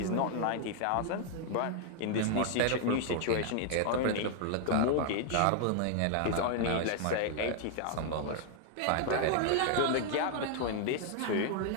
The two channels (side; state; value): both; different; correlation 0.00